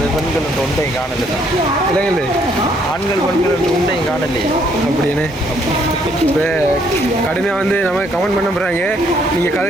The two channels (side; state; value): both; normal; correlation 0.68